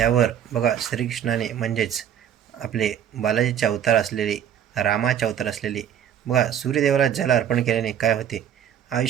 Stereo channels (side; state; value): left; quieter; 9.5 dB